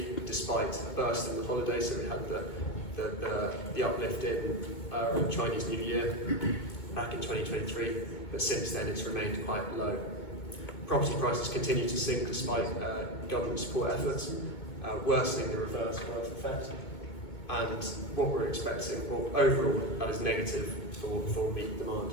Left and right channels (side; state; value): right; late; 2.2 ms